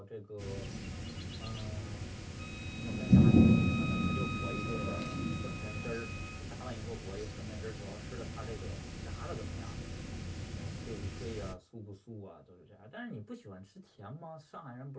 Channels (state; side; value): identical; both; correlation 1.00